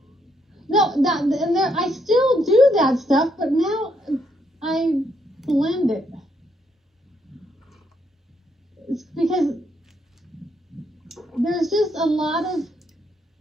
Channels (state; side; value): normal; both; correlation 0.75